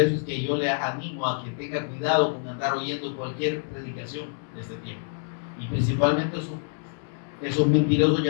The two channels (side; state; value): right; silent; 60 dB below the other